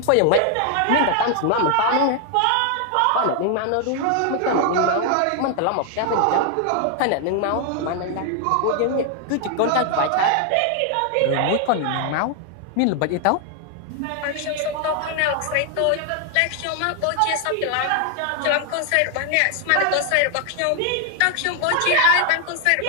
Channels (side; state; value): both; different; correlation 0.00